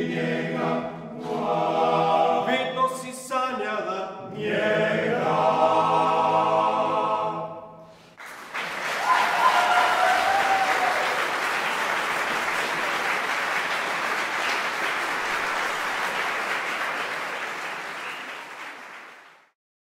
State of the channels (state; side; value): identical; both; correlation 1.00